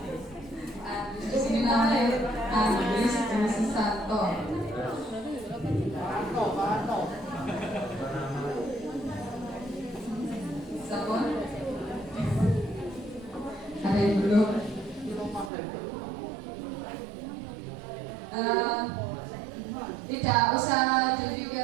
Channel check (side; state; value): left; drops out; at 15.5 s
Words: Di sini namanya Andres Susanto. Sabun. Tidak usah